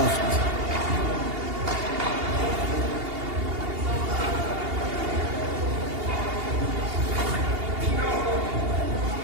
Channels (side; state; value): left; late; 2.8 ms